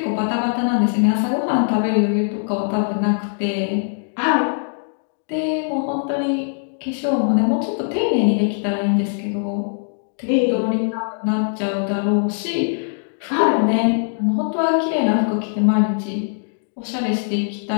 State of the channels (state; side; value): silent; right; digital silence